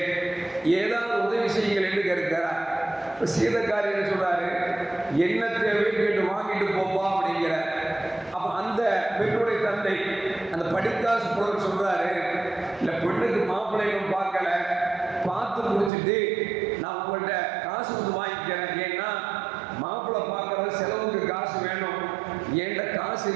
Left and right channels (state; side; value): drops out; left; at 15.9 s